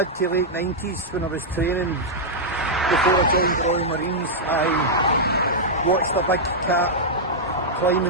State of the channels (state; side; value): normal; both; correlation -0.07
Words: to late 90s when I was training before I joined the Royal Marines, I watched a big cat